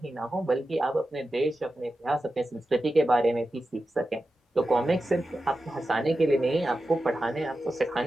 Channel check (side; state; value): both; normal; correlation 0.92